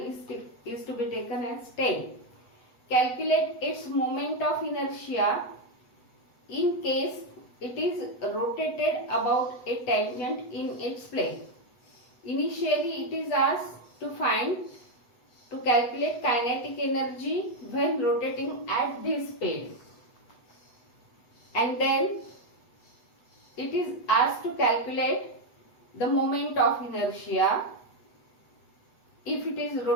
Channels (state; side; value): late; right; 8.1 ms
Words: is to be taken as 10. Calculate its moment of inertia in case it is rotated about a tangent in its plane. Initially it is asked to calculate kinetic energy when rotating at this speed, and then it is asked to calculate the moment of inertia if it is